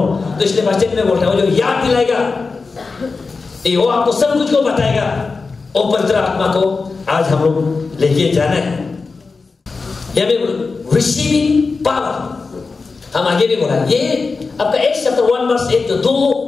तो इसलिए वचन में बोलता है, वो जो याद दिलाएगा, वो आपको सब कुछ को बताएगा। वो पवित्र आत्मा को आज हम लोग लेके जाना है। रिसीविंग पावर हम आगे भी बोला, ये आपका Acts chapter 1 verse 8 जो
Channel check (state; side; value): quieter; right; 4.3 dB